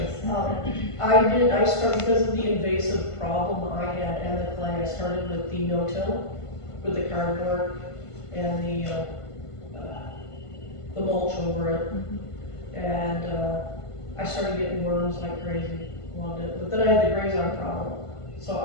I started because of the invasive problem I had and the clay. I started with the no-till, with the cardboard and the mulch over it. And I started getting worms like crazy. Loved it. But then I had the grazon problem. So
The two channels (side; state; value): right; late; 1.5 ms